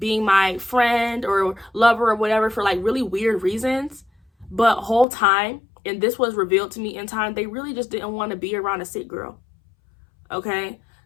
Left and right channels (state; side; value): drops out; right; at 5.1 s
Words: my friend or lover or whatever for like really weird reasons. But whole time, and this was revealed to me in time, they really just didn't want to be around a sick girl. Okay?